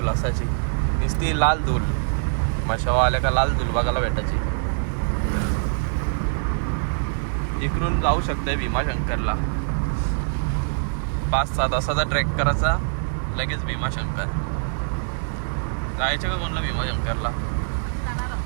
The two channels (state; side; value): silent; left; digital silence